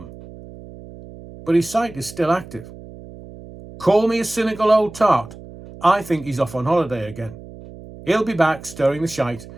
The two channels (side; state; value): right; noise; hum, 17 dB below the sound